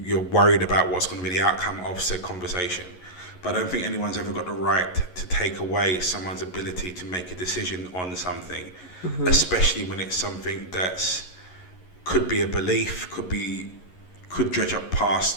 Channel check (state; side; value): late; right; 11 ms